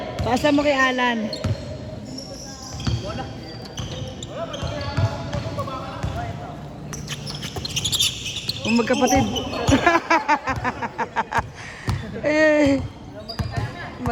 Pasa mo kay Alan. Kung magkapatid. Eh,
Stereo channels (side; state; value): both; identical; correlation 1.00